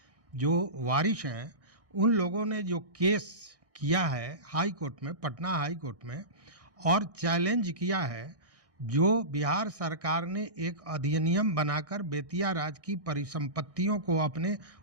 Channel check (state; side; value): late; left; 1.6 ms